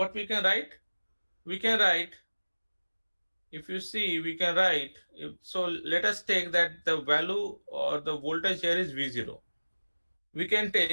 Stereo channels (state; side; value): inverted; both; correlation -1.00